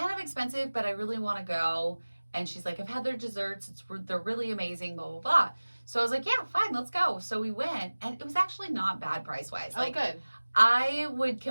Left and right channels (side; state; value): both; inverted; correlation -1.00